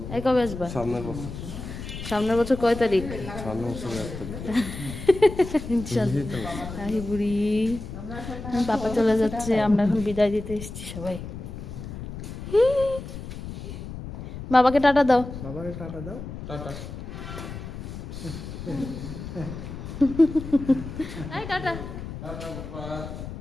এই কবে আসবা? সামনের বছর কয় তারিখ? ইনশাল্লাহ। বুড়ি পাপা চলে যাচ্ছে, আমরা এখন বিদায় দিতে এসেছি সবাই। বাবাকে টাটা দাও। বাবাকে টাটা দাও। টাটা। এই টাটা। টাটা বাবা।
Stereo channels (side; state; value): left; noise; rumble, 9 dB below the sound